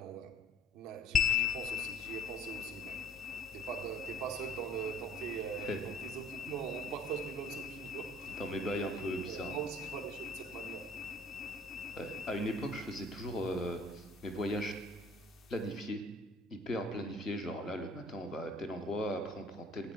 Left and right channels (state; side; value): normal; both; correlation 0.52